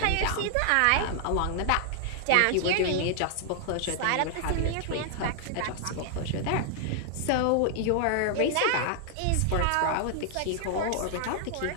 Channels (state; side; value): different; both; correlation 0.00